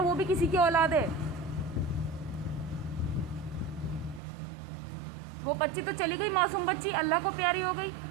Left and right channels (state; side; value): drops out; left; at 4.2 s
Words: वो भी किसी की औलाद है। वो बच्ची तो चली गई, मासूम बच्ची अल्लाह को प्यारी हो गई,